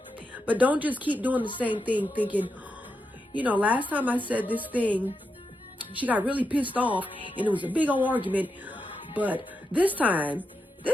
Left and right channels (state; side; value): normal; both; correlation 0.86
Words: But don't just keep doing the same thing thinking, you know, last time I said this thing, she got really pissed off and it was a big old argument. But this time